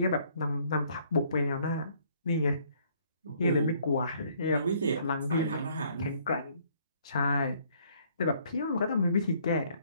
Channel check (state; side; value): inverted; both; correlation -0.63